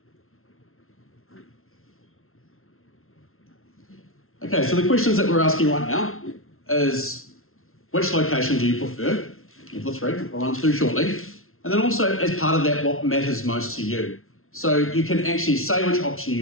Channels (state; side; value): late; right; 0.62 ms